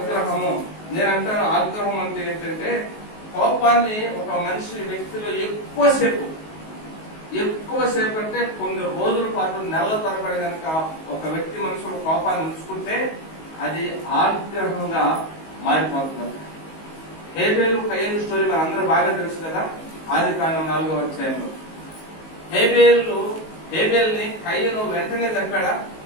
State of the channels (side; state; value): right; late; 19 ms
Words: నేనంటాను ఆగ్రహం అంటే ఏంటంటే కోపాన్ని ఒక మనిషి వ్యక్తిలో ఎక్కువసేపు అంటే కొన్ని రోజుల పాటు నెలల తరబడి కనుక ఒక వ్యక్తి మనసులో కోపాన్ని ఉంచుకుంటే అది ఆగ్రహంగా మారిపోతుంది. హేబేలు కయ్యేలు స్టోరీ మన అందరూ బాగా తెలుసు కదా. ఆదికాండం 4వ అధ్యాయంలో హేబేల్ని కయ్యను వెంటనే చంపాడా?